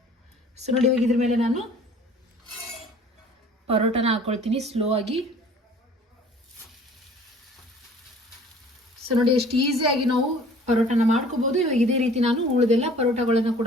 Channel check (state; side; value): normal; both; correlation 0.50